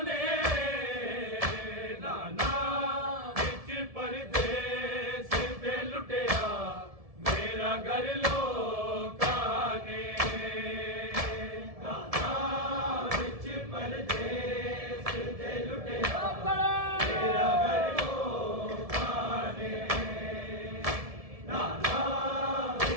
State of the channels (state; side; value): late; left; 1.7 ms